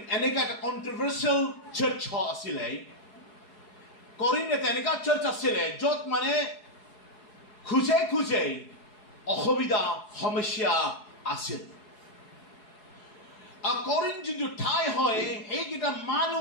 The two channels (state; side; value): late; right; 4.7 ms